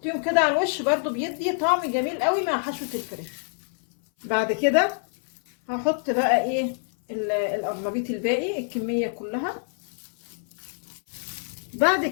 كده على الوش، برضو بيدي طعم جميل قوي مع حشوه الفراخ. بعد كده هحط بقى ايه القرنبيط الباقي، الكمية كلها. بعد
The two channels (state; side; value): silent; right; 61 dB below the other